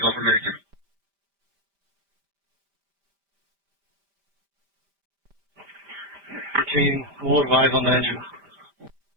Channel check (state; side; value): late; left; 5.1 ms